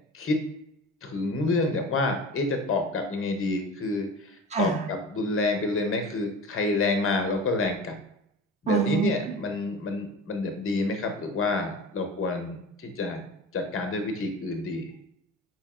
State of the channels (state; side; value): normal; both; correlation 0.35